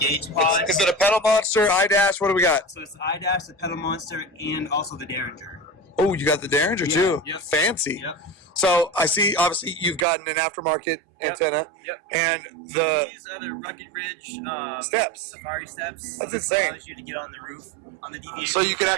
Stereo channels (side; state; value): left; drops out; at 10.1 s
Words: pod. Is it a pedal monster, iDash? What do we got? So it's iDash, the pedal monster, and also the Derringer. Oh, you got the Derringer too. Yep. Fancy. Yep. So I see. Obviously, you've gotten an aftermarket antenna. Yep. And these are the Rugged Ridge steps. Safari steps. That's so this insane. allows you to get on the roof on the DVA. So you can